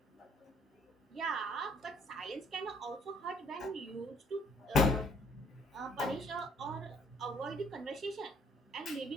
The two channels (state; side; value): normal; both; correlation 0.63